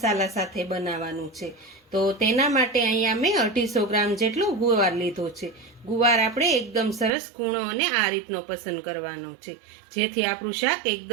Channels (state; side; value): drops out; left; at 7.1 s